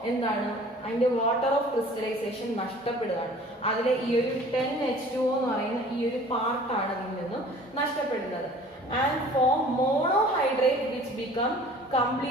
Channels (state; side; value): normal; both; correlation 0.48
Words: എന്താണ് അതിന്റെ വാട്ടർ ഓഫ് ക്രിസ്റ്റലൈസേഷൻ നഷ്ടപ്പെടുകയാണ്. അതിലെ ഈ ഒരു 10H2O എന്ന് പറയുന്ന ഈ ഒരു പാർട്ടാണ് അതിൽ നിന്നും നഷ്ടപ്പെടുന്നത്. And form monohydrate which become